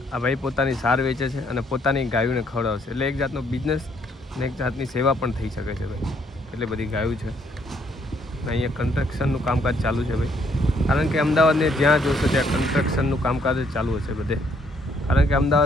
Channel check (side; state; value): both; normal; correlation 0.69